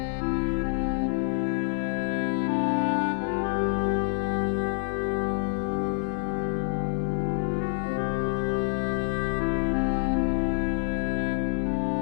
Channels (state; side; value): silent; right; 60 dB below the other